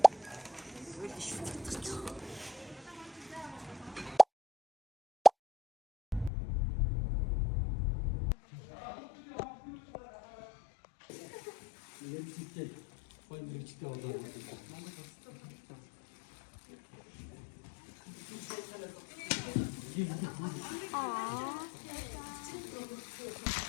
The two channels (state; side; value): drops out; right; at 6.3 s